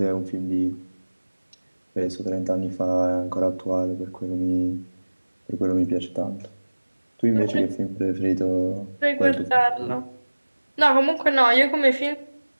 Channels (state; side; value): inverted; both; correlation -1.00